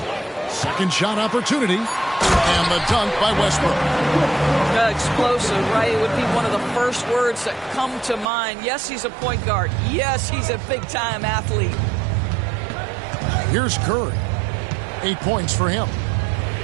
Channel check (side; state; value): left; drops out; at 8.3 s